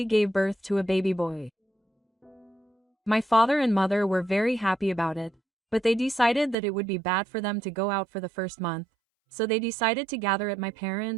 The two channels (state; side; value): drops out; left; at 6.6 s